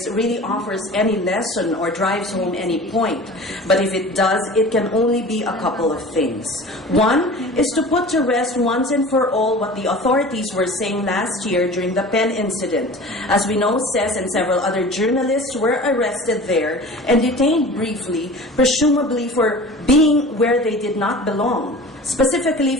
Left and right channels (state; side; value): normal; both; correlation 0.39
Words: really offers any lesson or drives home any point. But if it does, it can only be a couple of things. One is to put to rest once and for all what the authorities were saying last year during the Pen incident. As we know, Ces and several other journalists were arrested there and detained briefly, presumably for being where they did not belong.